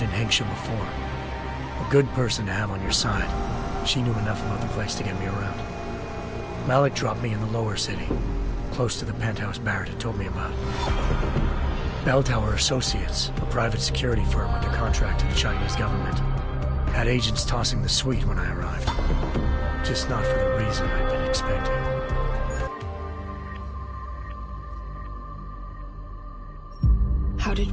in Hengsha before. A good person to have on your side. She knew enough about the place to get me around. Malik dropped me in the lower city, close to the penthouse Barrett had told me about. Bell Tower Associates, a private security firm under contract to the Chinese government, had agents tossing the suite when I arrived. Just not for the reason I'd been expecting. How did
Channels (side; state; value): both; identical; correlation 1.00